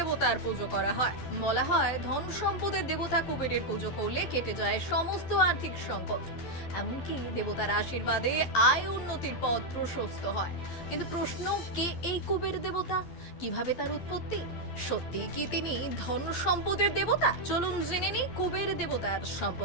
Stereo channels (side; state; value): right; late; 12 ms